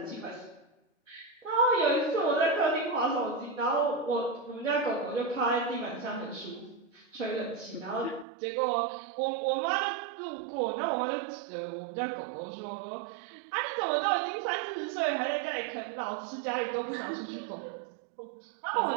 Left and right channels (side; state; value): left; drops out; at 8.2 s